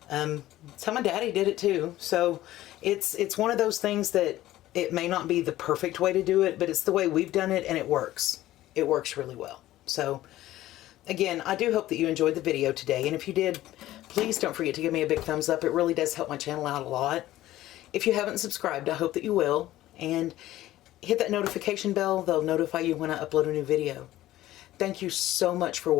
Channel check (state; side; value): quieter; right; 15.0 dB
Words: It's how my daddy did it too. So it's one of those things that it may not be the perfect way to do it, but it's the way we've done it, and it works. It works really well. So again, I do hope that you enjoyed the video today, and if you did, please don't forget to give me a big thumbs up. It really does help my channel out a lot. If you haven't subscribed, I hope that you will, and hit that notification bell. They'll notify you when I upload a new video. Thank you so much for